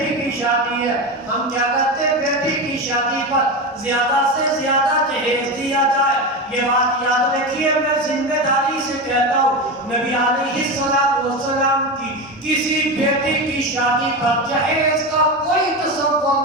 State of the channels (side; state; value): both; normal; correlation 0.19